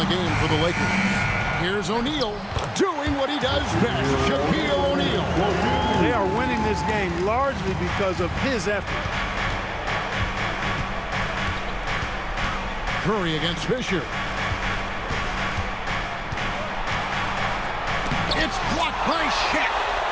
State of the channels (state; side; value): identical; both; correlation 1.00